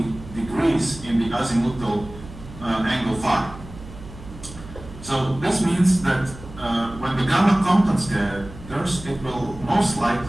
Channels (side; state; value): right; noise; hum, 15 dB below the sound